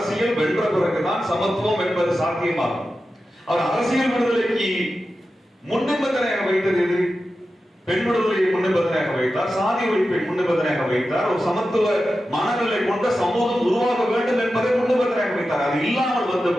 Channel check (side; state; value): both; normal; correlation 0.92